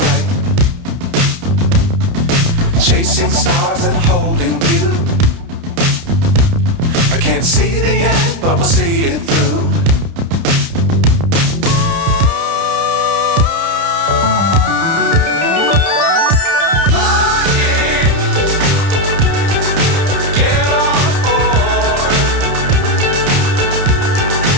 Chasing stars and holding you. I can't see the end, but we'll see it through.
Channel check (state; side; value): late; left; 30 ms